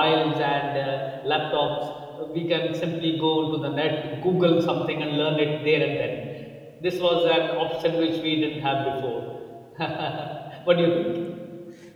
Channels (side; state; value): both; identical; correlation 1.00